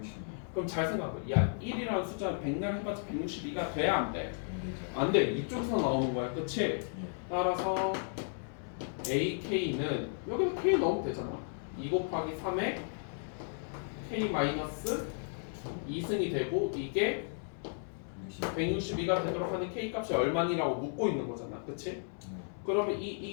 그럼 잘 생각해. 야, 1이라는 숫자는 100날 해봤자 162가 돼야 안 돼? 안 돼. 이쪽에서 나오는 거야. 그치? 따라서 AK는 여기서 K 넣으면 되잖아. 2 곱하기 3에 K 마이너스 2승이 되고 이게 162가 되도록 하는 K 값이 얼마니라고 묻고 있는 거잖아. 그치? 그러면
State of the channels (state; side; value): silent; right; 55 dB below the other